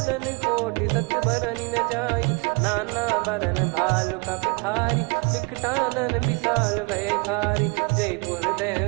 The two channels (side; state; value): left; quieter; 30.9 dB